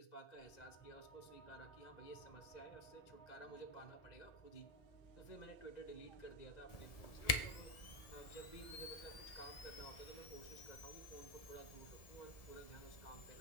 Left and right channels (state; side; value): late; right; 1.7 ms